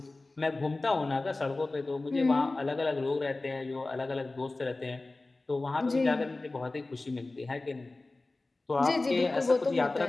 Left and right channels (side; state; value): right; quieter; 3.2 dB